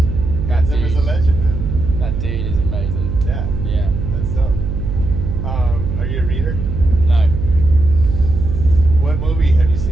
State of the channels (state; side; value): noise; right; hum, 4 dB below the sound